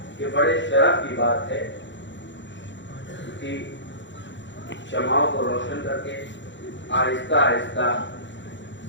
کہ بڑے شرف کی بات ہے کہ شمعوں کو روشن کر کے آہستہ آہستہ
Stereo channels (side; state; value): right; late; 0.53 ms